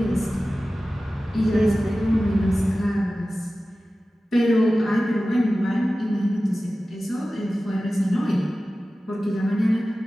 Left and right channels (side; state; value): both; normal; correlation 0.95